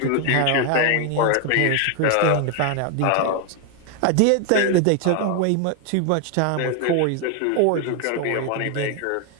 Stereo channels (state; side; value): different; both; correlation 0.00